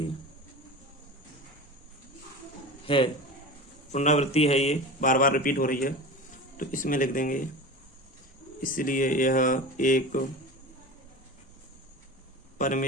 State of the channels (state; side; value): normal; both; correlation 0.31